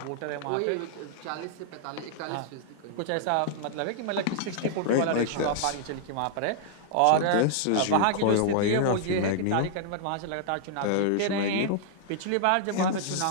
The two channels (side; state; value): both; different; correlation -0.01